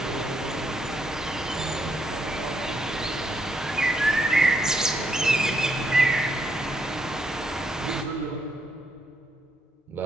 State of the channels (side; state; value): both; normal; correlation 0.76